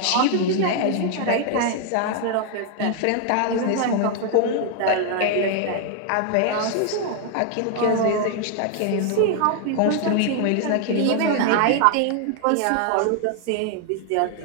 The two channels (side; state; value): both; different; correlation 0.00